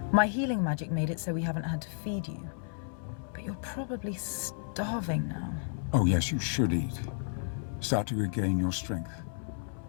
My healing magic made it so we haven't had to feed you. But You're probably starving now. Oh yes, you should eat. Start to regain your strength.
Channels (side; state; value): right; silent; 56 dB below the other